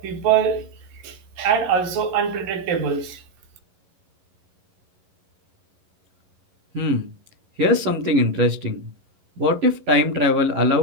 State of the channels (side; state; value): left; late; 11 ms